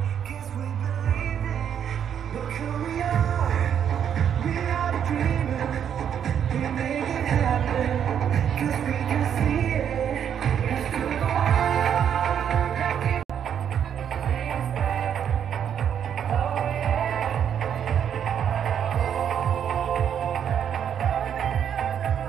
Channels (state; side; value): quieter; left; 8.7 dB